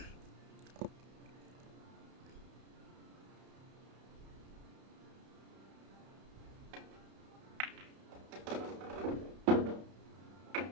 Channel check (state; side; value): late; left; 31 ms